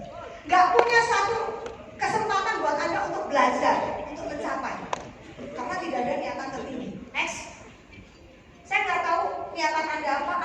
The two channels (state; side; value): identical; both; correlation 1.00